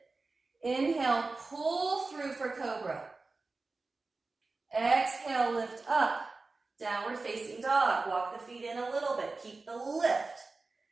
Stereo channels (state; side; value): quieter; left; 3.7 dB